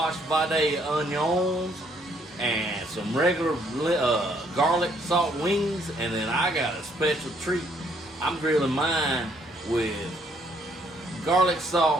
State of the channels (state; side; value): normal; both; correlation 0.68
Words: vade onions, and some regular garlic salt wings, and then I got a special treat. I'm grilling mine with garlic